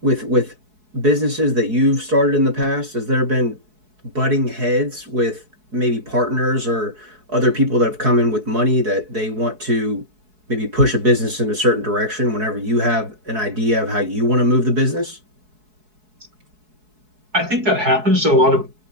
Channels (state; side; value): late; left; 4.7 ms